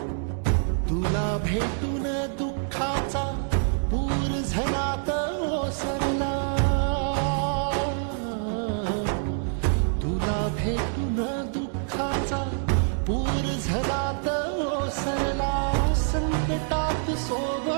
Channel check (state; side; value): silent; left; digital silence